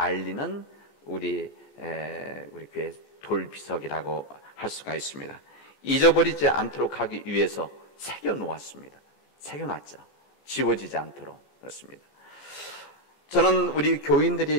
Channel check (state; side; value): late; right; 34 ms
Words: 우리 교회 돌비석이라고 할 수가 있습니다. 잊어버리지 않도록 하기 위해서 새겨놓았습니다. 새겨놨죠. 지워지지 않도록. 그렇습니다. 저는 우리